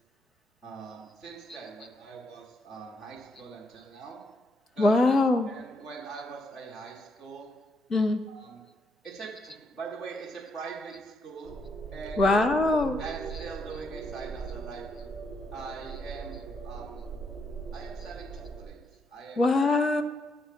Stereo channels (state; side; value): normal; both; correlation 0.77